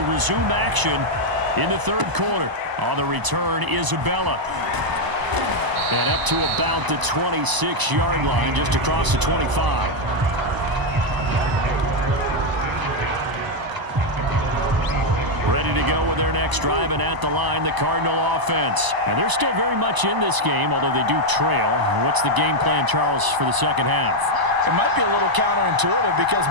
resume action in the third quarter. On the return, Isabella. And up to about the 26-yard line, just across the 25. Ready to go with their next drive, and at the line, the Cardinal offense. And they're still very much in this game, although they do trail. What's the game plan, Charles, for the second half? It might be a little counterintuitive because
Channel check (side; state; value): left; late; 1.0 ms